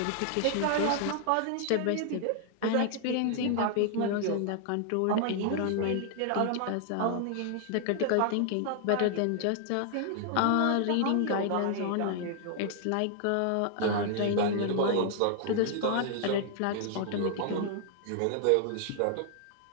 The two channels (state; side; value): different; both; correlation 0.00